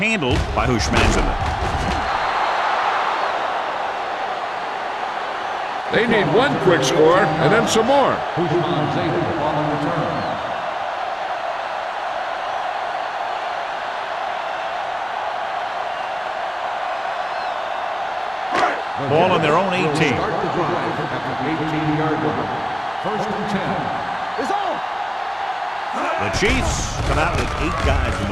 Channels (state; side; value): identical; both; correlation 1.00